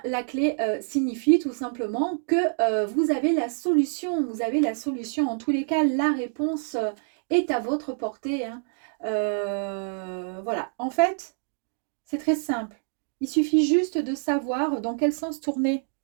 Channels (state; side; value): silent; left; digital silence